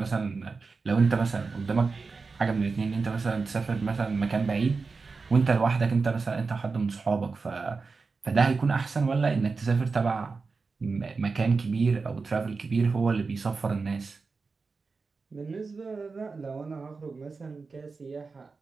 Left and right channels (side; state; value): left; quieter; 4.4 dB